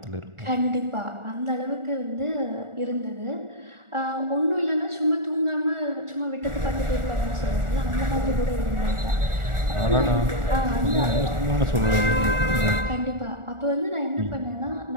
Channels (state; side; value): late; left; 1.4 ms